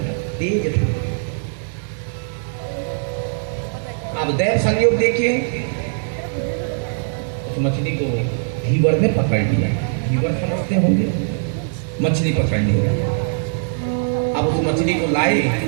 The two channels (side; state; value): left; silent; digital silence